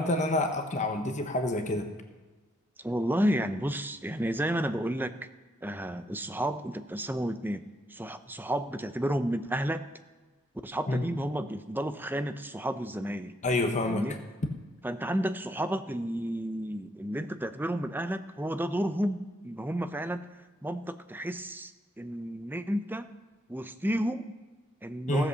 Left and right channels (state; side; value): normal; both; correlation 0.74